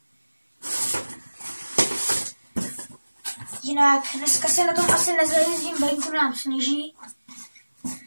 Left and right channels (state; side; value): inverted; both; correlation -1.00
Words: Jinak dneska se na tom asi nezajezdím, venku nám sněží.